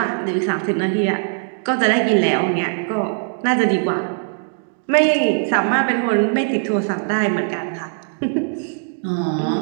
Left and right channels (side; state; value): left; silent; digital silence